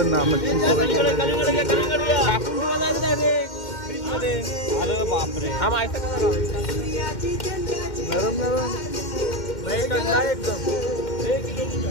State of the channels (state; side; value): late; right; 2.1 ms